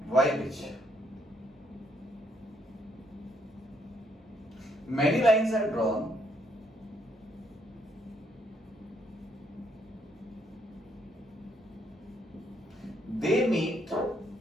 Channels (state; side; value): normal; both; correlation 0.72